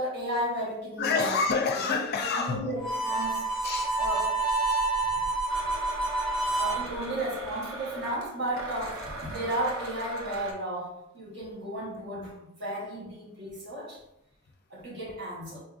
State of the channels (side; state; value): both; normal; correlation 0.20